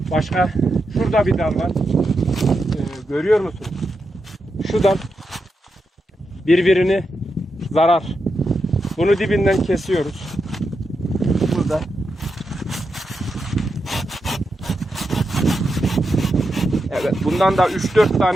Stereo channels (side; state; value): both; normal; correlation 0.86